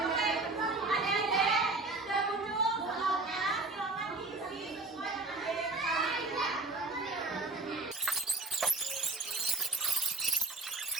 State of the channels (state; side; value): quieter; left; 3.3 dB